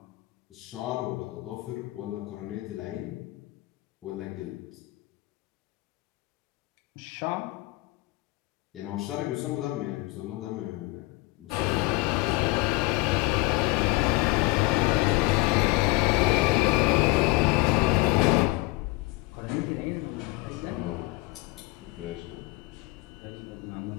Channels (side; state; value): right; quieter; 21.9 dB